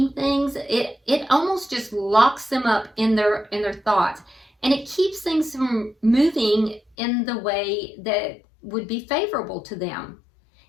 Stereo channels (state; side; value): drops out; right; at 6.8 s